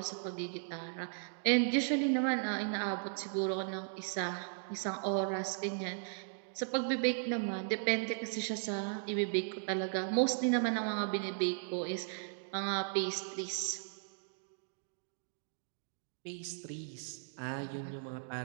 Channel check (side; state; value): left; silent; digital silence